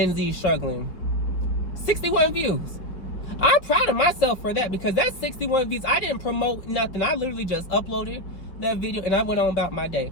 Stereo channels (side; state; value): right; late; 5.0 ms